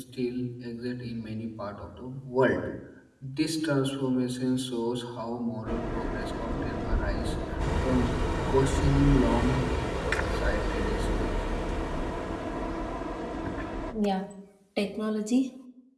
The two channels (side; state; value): both; identical; correlation 1.00